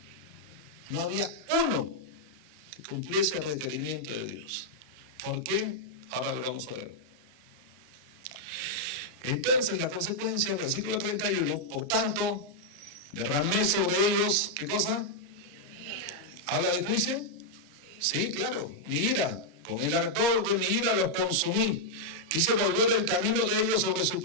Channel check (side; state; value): left; late; 34 ms